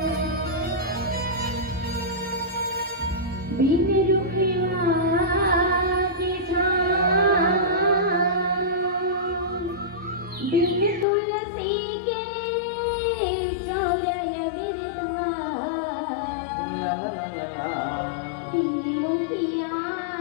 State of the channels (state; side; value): drops out; right; at 11.1 s